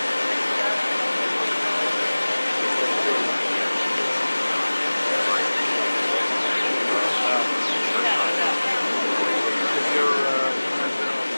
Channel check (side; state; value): both; inverted; correlation -1.00